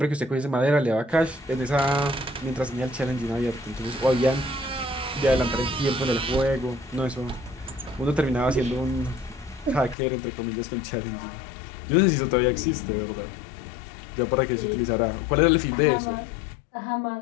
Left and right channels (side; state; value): right; drops out; at 10.0 s